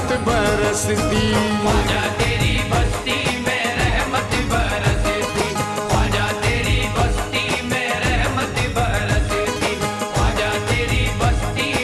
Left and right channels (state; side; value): identical; both; correlation 1.00